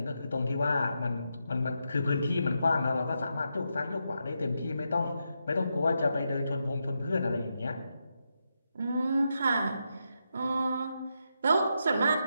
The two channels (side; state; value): both; inverted; correlation -0.84